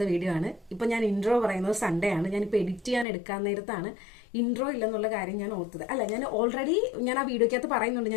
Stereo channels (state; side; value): drops out; right; at 3.1 s